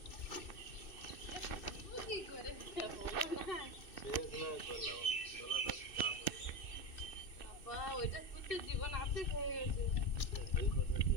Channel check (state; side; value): late; right; 2.6 ms